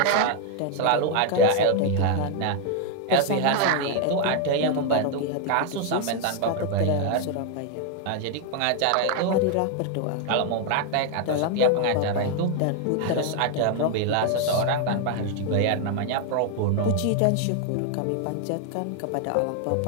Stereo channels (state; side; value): different; both; correlation 0.01